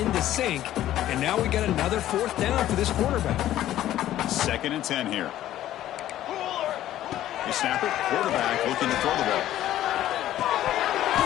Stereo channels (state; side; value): quieter; right; 13.1 dB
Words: sync. And now we got another 4th down for this quarterback. 2nd and 10 here. They snap it. Quarterback looking to throw the ball.